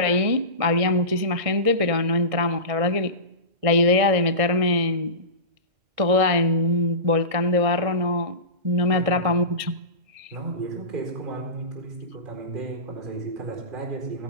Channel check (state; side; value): late; left; 1.6 ms